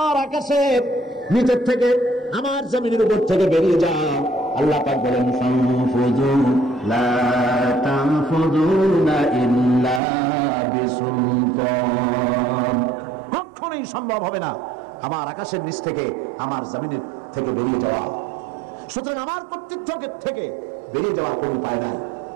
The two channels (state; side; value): drops out; left; at 10.0 s